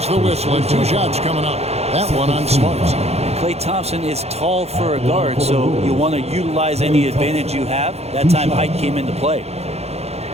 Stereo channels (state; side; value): late; left; 0.31 ms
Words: the whistle and 2 shots coming up. That one on Smart. Klay Thompson is tall for a guard, so you want to utilize any advantage you have. That time height came into play.